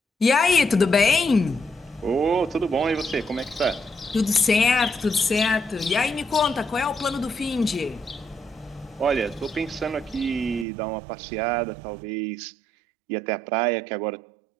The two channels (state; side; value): drops out; left; at 10.7 s